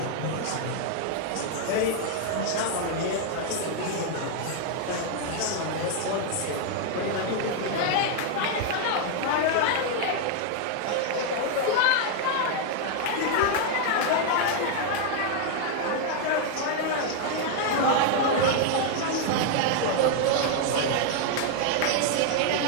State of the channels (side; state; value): both; different; correlation 0.00